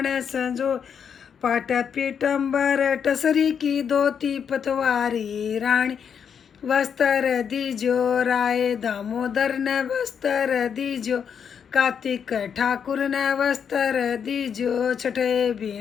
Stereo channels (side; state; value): right; quieter; 7.4 dB